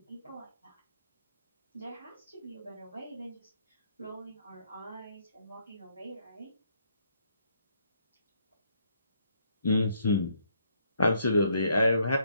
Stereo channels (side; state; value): both; inverted; correlation -0.70